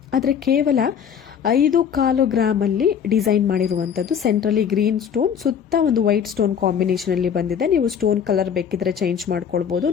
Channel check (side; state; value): right; quieter; 7.9 dB